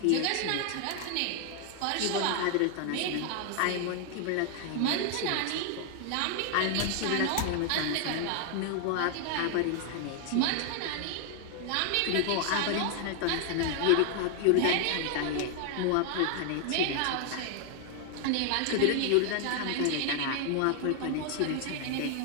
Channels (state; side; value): different; both; correlation 0.00